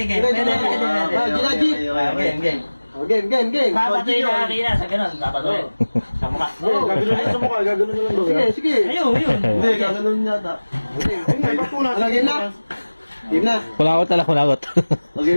Game. Game. Papatuloy na arena sa ganun. Papatuloy. Sa mukha. Gaganon sa mukha. Gaganon na lang daw. Sige. Ayun. Hindi, gaganon yata. Ano, game na? Game na. Kulakot. O,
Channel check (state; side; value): inverted; both; correlation -1.00